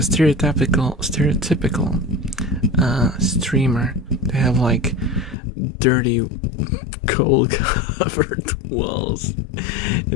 streamer. They have like dirty coal covered walls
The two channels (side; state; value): right; drops out; at 5.4 s